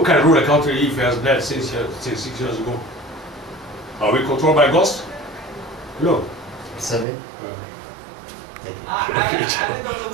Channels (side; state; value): left; drops out; at 7.1 s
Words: can rule a country if he has dead since 6 years ago? Are we controlled by ghosts? No. Sorry?